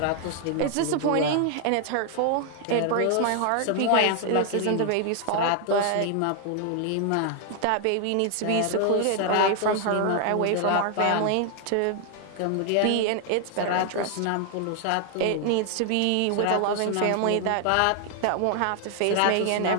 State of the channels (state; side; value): different; both; correlation 0.00